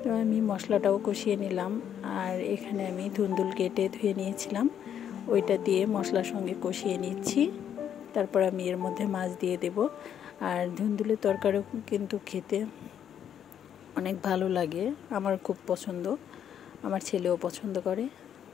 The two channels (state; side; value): quieter; right; 9.3 dB